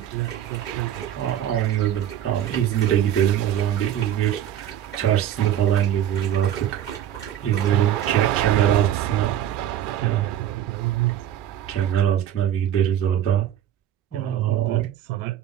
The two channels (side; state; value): left; quieter; 10.9 dB